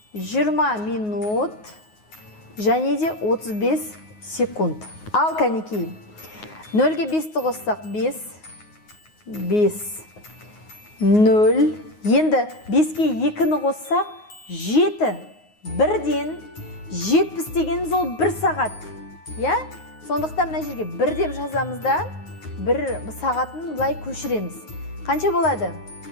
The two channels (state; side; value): late; right; 9.5 ms